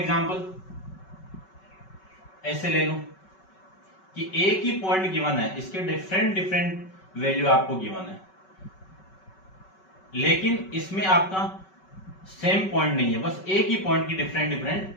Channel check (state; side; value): late; right; 5.3 ms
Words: ऐसे ले लूं कि एक ही पॉइंट गिवन है, इसके डिफरेंट वैल्यू आपको गिवन है, लेकिन इसमें आपका सेम पॉइंट नहीं है, बस एक ही पॉइंट की डिफरेंट